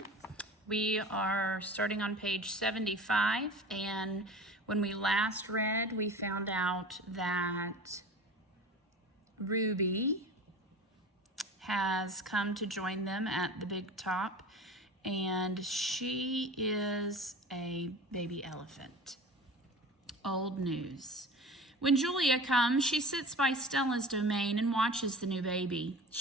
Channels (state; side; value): normal; both; correlation 0.36